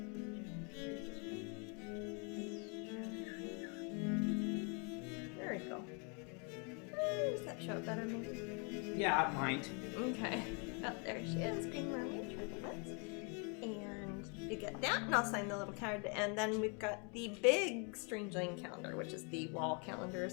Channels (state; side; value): quieter; right; 35.9 dB